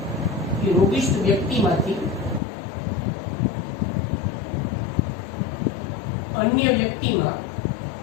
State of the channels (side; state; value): right; drops out; at 2.4 s